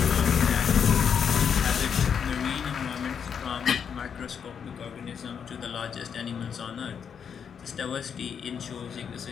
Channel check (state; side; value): quieter; right; 7.3 dB